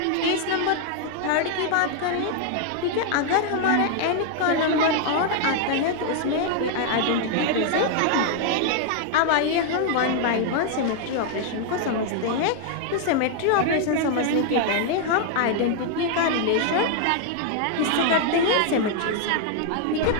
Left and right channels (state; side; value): different; both; correlation 0.00